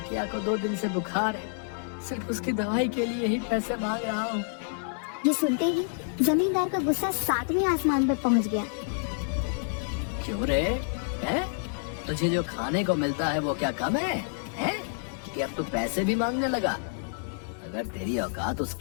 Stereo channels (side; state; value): right; silent; digital silence